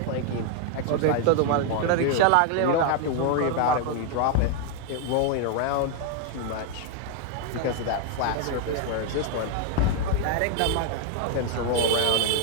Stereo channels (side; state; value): both; different; correlation 0.00